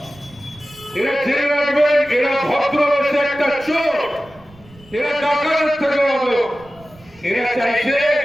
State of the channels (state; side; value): noise; right; rumble, 25 dB below the sound